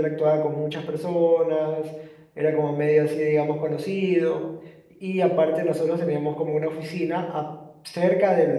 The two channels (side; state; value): both; identical; correlation 1.00